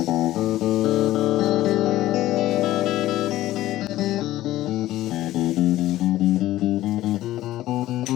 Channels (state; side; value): quieter; right; 15.1 dB